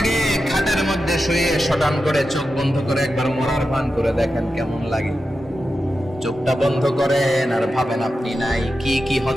খাটের মধ্যে শুয়ে শটান করে চোখ বন্ধ করে একবার মরার ভান করে দেখেন কেমন লাগে। চোখটা বন্ধ করেন আর ভাবেন আপনি নাই, কি কি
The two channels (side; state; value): both; normal; correlation 0.91